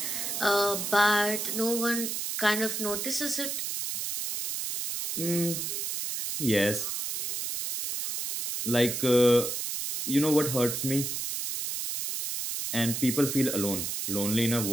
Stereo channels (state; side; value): noise; right; hiss, 3 dB below the sound